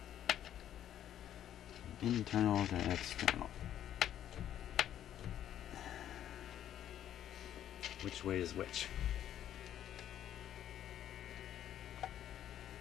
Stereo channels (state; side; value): quieter; right; 10.9 dB